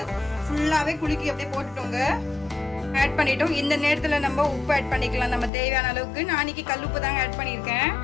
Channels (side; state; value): right; drops out; at 5.5 s